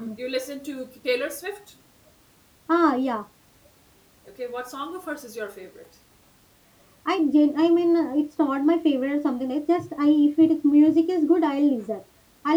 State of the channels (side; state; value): both; identical; correlation 1.00